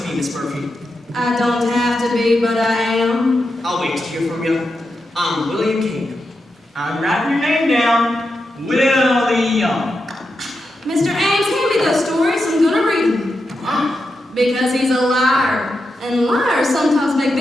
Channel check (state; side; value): normal; both; correlation 0.87